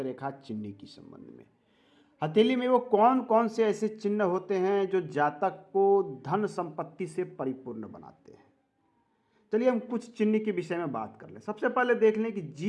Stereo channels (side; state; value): both; identical; correlation 1.00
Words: चिन्ह के संबंध में। हथेली में वो कौन कौन से ऐसे चिन्ह होते हैं जो जातक को धन संपत्ति से परिपूर्ण बनाते हैं। चलिए हम कुछ चिन्ह के विषय में बात कर लें। सबसे पहले देख लें कि